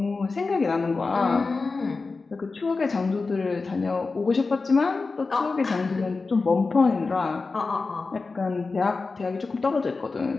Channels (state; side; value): quieter; right; 4.0 dB